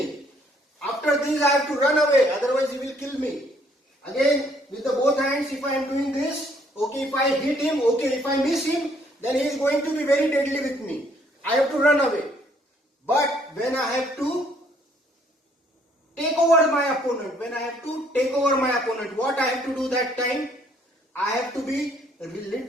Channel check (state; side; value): normal; both; correlation 0.65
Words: After this I have to run away, otherwise he will kill me. Again, with the both hands, if I am doing this, okay, if I hit him, okay, if I miss him, then he is going to be very deadly with me. I have to run away. But when I have to take over my opponent, what I have to do that time? I have to be